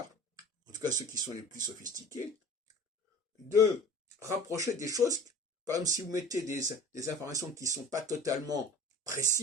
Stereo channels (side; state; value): both; normal; correlation 0.41